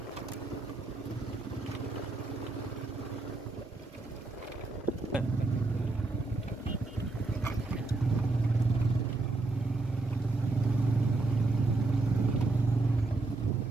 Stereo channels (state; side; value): quieter; left; 3.3 dB